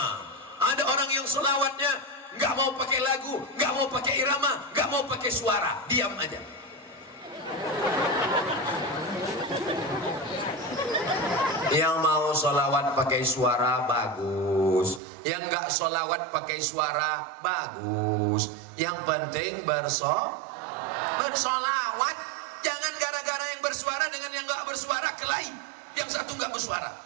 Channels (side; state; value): left; drops out; at 15.0 s